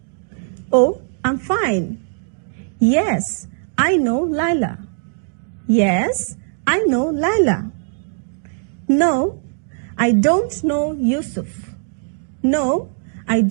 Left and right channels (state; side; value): silent; left; digital silence